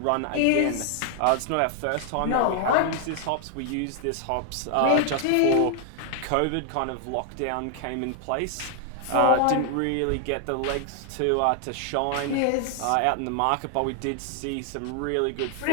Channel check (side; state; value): both; different; correlation 0.00